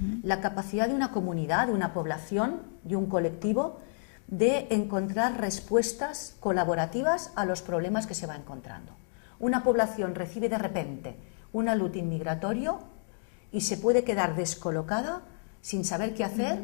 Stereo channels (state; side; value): silent; right; digital silence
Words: la capacidad de una comunidad, de una población, de un colectivo, de encontrar respuestas colaborativas a los problemas que se va encontrando. Una población recibe de repente un alud inmigratorio y se puede quedar descolocada, sin saber qué hacer,